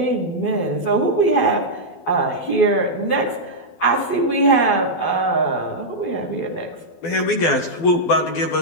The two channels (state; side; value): late; right; 12 ms